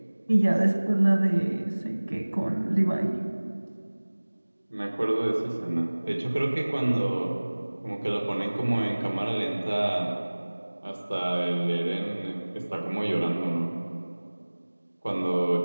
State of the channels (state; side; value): inverted; both; correlation -1.00